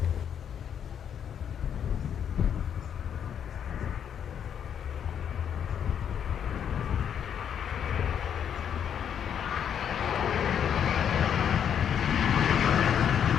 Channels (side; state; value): right; quieter; 8.5 dB